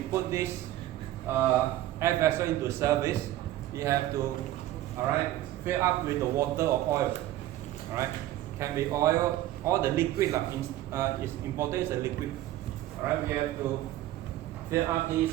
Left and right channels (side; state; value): left; quieter; 14.4 dB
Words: put this air vessel into service, you have to fill up with the water or oil. Alright, can be oil or the liquid. It's important is the liquid. Alright, we have to fill up